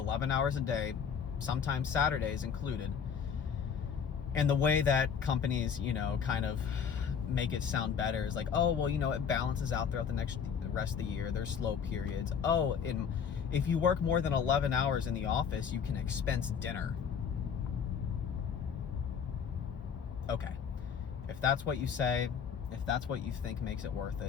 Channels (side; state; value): right; quieter; 7.1 dB